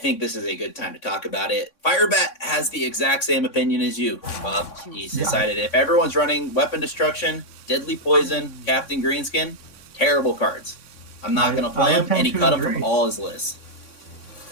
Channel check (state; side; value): late; right; 3.6 ms